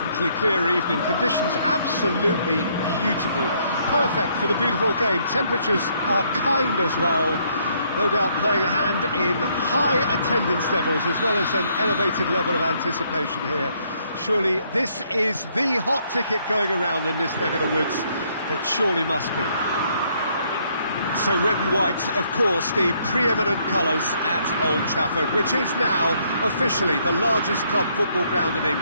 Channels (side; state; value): both; inverted; correlation -0.69